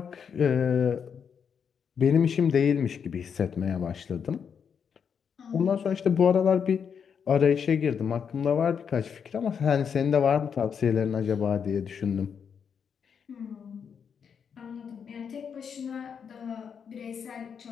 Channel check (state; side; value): quieter; right; 7.0 dB